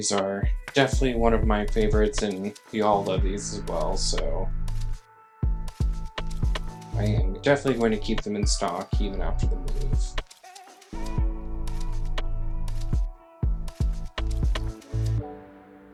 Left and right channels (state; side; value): identical; both; correlation 1.00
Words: are definitely one of my favorites, and we all love these as well, so I am definitely going to keep them in stock even after the move.